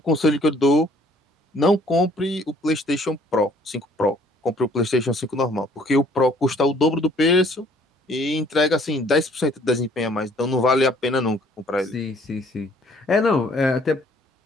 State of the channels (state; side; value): normal; both; correlation 0.59